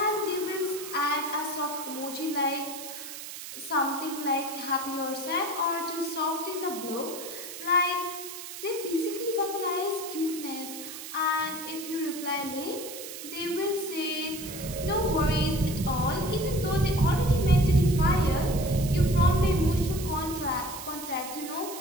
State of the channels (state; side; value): noise; right; hiss, 10 dB below the sound